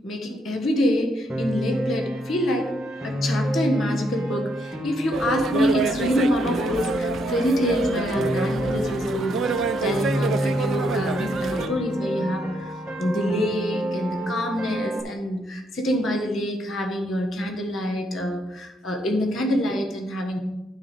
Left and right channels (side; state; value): both; normal; correlation 0.75